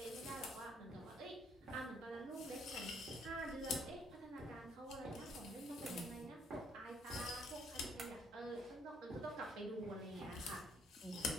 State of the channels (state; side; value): normal; both; correlation 0.66